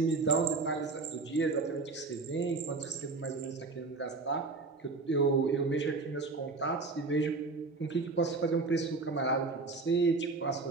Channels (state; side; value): quieter; left; 3.8 dB